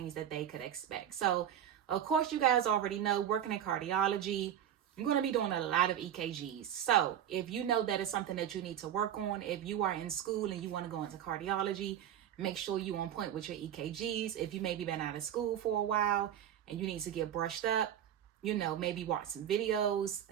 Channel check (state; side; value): quieter; left; 10.2 dB